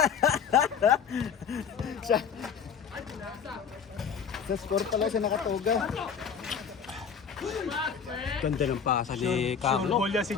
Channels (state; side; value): quieter; right; 6.9 dB